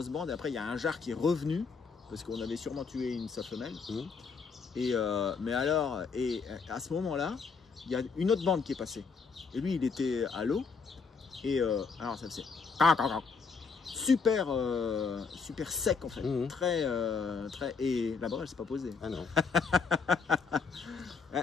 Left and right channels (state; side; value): quieter; right; 5.2 dB